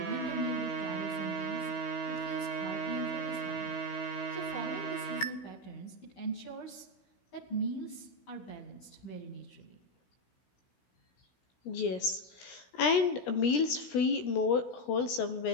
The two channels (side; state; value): right; late; 17 ms